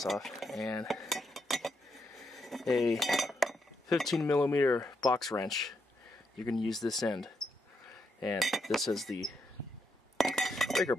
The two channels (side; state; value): both; normal; correlation 0.80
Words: off, and a 15mm box wrench. You're going to use this end, and this is the breaker